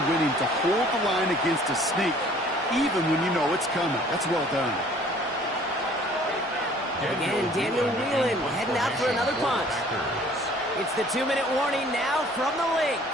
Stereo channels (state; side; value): normal; both; correlation 0.54